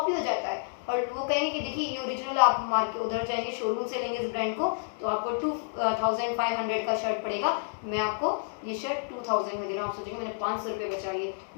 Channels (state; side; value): silent; right; digital silence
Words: हो जाता है और वो कहेंगे कि देखिए ये ओरिजिनल, आप मार्केट उधर जाएंगे शोरूम से लेंगे इस ब्रांड को तो आपको 2500 का शर्ट पड़ेगा, मैं आपको ये शर्ट 2000 में दे रहा हूँ। आप सोचेंगे मैंने 500 रुपये बचा लिए,